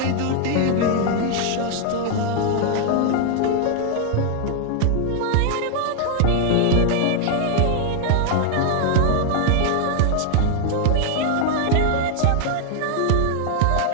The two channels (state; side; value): different; both; correlation 0.00